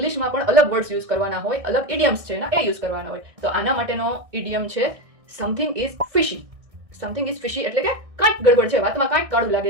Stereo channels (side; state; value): left; late; 1.6 ms